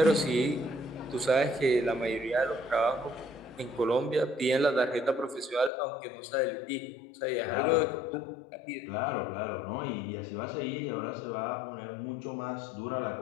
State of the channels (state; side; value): drops out; right; at 5.7 s